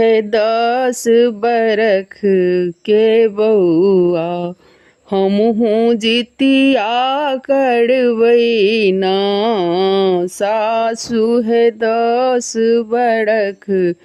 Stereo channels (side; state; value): both; identical; correlation 1.00